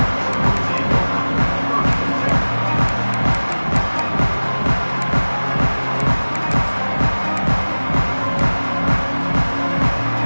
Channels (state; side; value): inverted; both; correlation -1.00